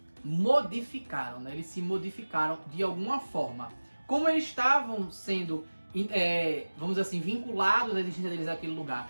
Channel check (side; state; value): both; inverted; correlation -1.00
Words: modificaram, né? Eles se modificaram de alguma forma. Como eles estavam sendo... vamos dizer assim, vinculados à existência deles naquele